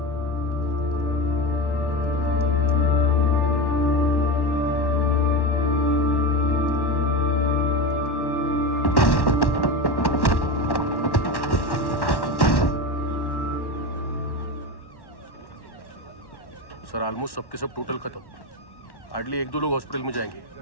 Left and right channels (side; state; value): right; late; 1.1 ms